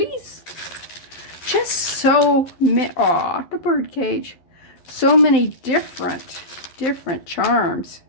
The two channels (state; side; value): late; right; 12 ms